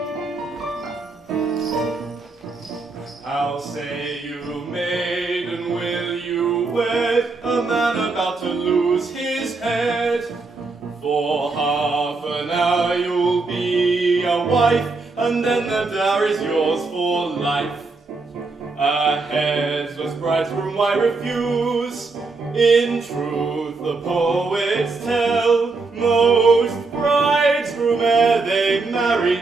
How say you, maiden, will you wed a man about to lose his head? For half an hour you'll be a wife, and then the dower is yours for life. A headless bridegroom why refuse? In truth the poets tell, most bridegroom ere they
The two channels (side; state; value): left; quieter; 3.8 dB